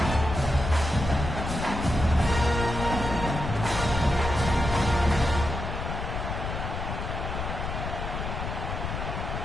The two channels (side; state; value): left; noise; rumble, 4 dB below the sound